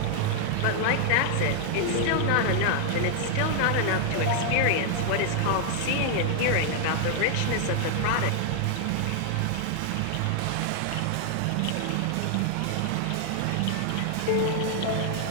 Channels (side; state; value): both; different; correlation 0.00